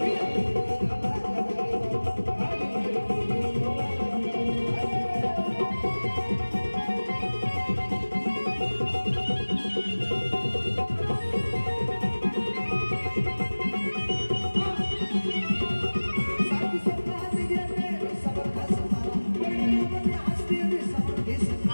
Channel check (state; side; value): inverted; both; correlation -1.00